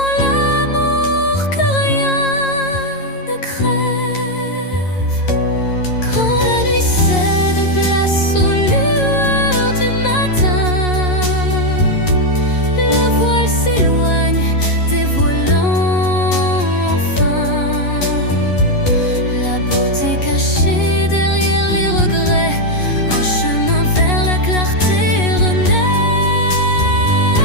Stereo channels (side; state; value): right; late; 11 ms